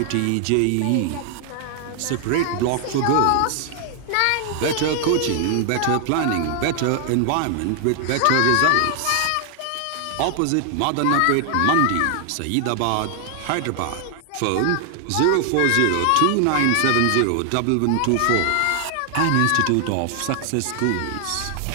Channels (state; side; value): different; both; correlation 0.00